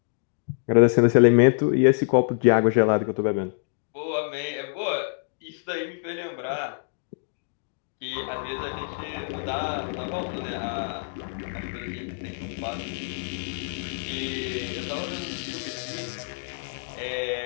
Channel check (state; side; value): silent; right; digital silence